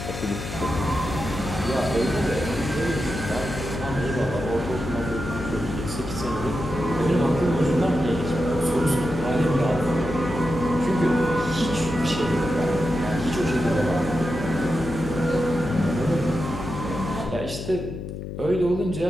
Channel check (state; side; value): noise; left; hum, 8 dB below the sound